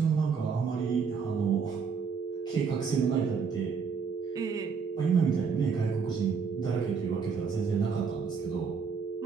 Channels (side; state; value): left; quieter; 5.8 dB